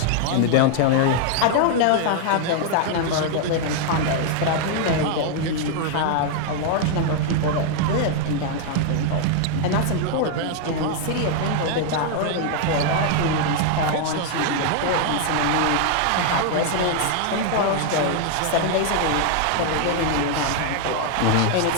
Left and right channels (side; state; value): both; different; correlation 0.00